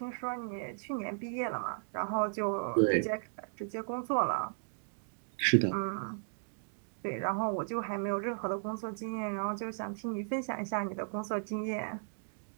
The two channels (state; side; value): silent; left; digital silence